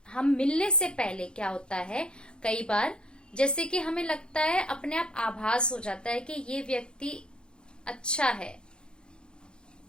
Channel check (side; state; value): right; late; 0.050 ms